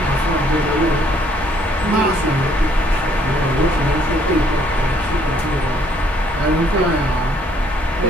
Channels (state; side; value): normal; both; correlation 0.65